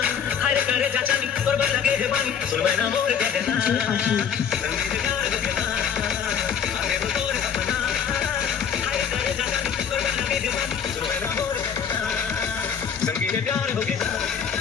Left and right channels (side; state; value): right; quieter; 7.6 dB